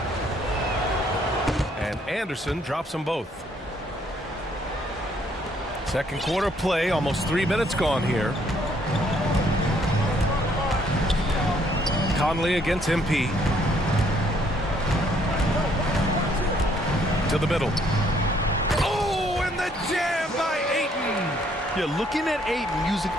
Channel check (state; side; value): normal; both; correlation 0.66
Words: And Anderson drops them both. Second quarter play, almost 3 minutes gone here. Conley against MP. To the middle. Oh, and the jam by Ayton. You're looking at Ayton using